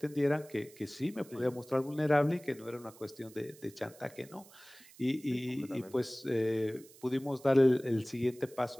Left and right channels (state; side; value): noise; right; hiss, 23 dB below the sound